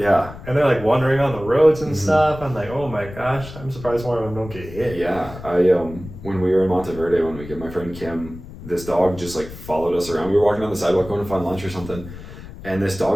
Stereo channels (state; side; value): noise; left; rumble, 14 dB below the sound